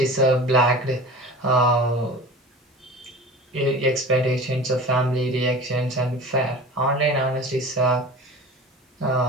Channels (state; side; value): normal; both; correlation 0.37